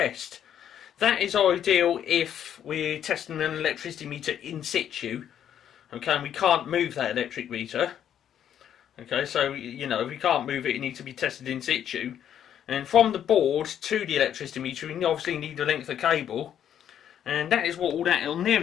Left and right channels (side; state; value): right; quieter; 9.7 dB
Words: That is ideal if we're testing an electricity meter in situ. Okay, and we can't move that electric meter. Okay, so, you know, if we can't move it, it needs to be tested in situ. And from the board to the electricity meter, we obviously need a length of cable. And that is what all that on there